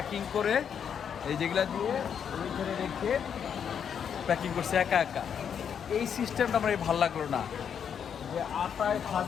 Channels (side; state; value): right; quieter; 7.8 dB